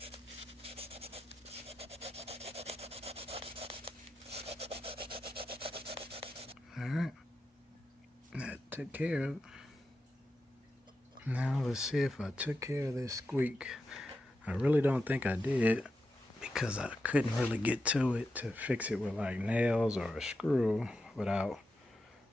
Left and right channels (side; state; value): both; normal; correlation 0.88